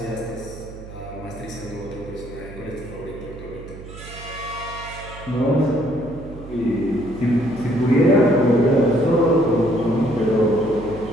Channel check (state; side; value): noise; right; hum, 15 dB below the sound